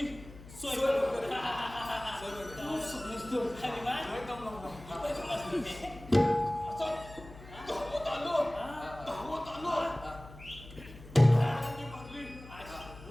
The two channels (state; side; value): noise; left; hum, 17 dB below the sound